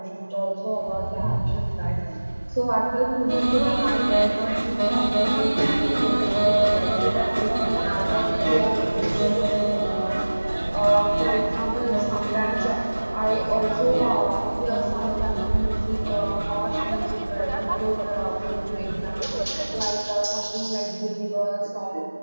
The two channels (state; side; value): inverted; both; correlation -1.00